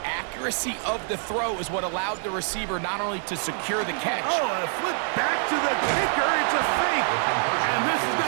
accuracy of the throw is what allowed the receiver not only to secure the catch. Oh, a flip back to the kicker. It's a fake. And this is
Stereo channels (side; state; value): left; silent; 56 dB below the other